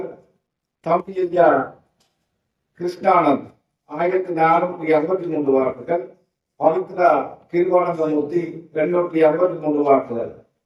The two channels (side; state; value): both; identical; correlation 1.00